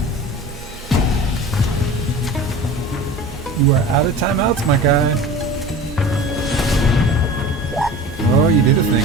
You are out of timeouts, my guy. Oh, you did a thing.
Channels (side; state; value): both; normal; correlation 0.37